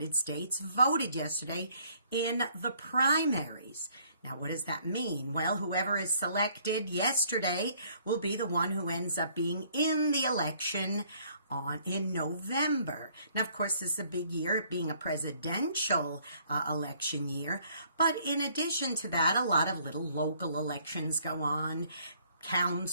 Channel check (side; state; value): both; inverted; correlation -0.63